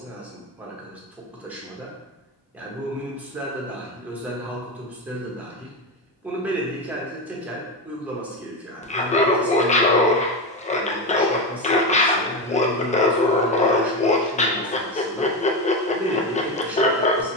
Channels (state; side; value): normal; both; correlation 0.15